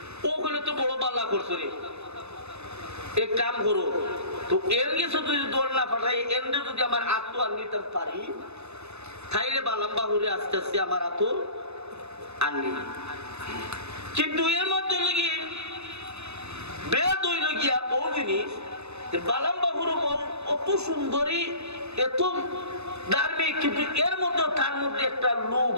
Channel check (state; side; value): late; left; 0.81 ms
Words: ও হলে তো বড় বাল্লা করছো রে, এক কাম করো তো এর গেছে যদি দৌড় না পাঠাই এমনি যদি আমার আত্ম আর নিতে পারি তাইলে বালাম্বাহুরে আস্তে আস্তে আমার আত্ম আনলি, কিন্তু এর মধ্যে লেগে বেদ হইল গিয়া ও জিনিস বালাম্বাহুর অত সুন্দরী এত ধার্মিক, কিন্তু এর মধ্যে তার মধ্যে একটা লোভ